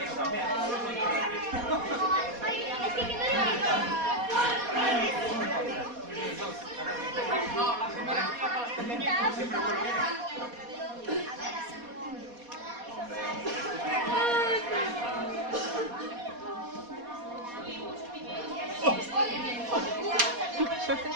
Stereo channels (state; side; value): late; left; 4.2 ms